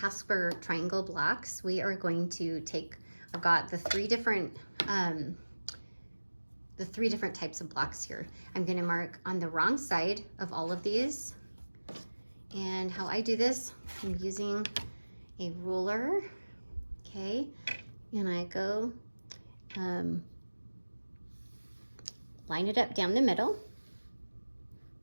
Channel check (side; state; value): both; inverted; correlation -1.00